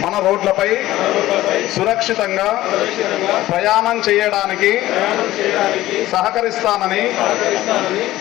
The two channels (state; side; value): quieter; right; 15.7 dB